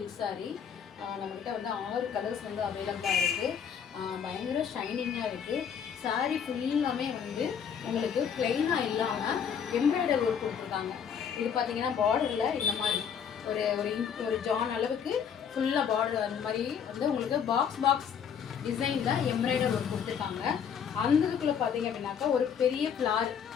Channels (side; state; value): right; quieter; 7.6 dB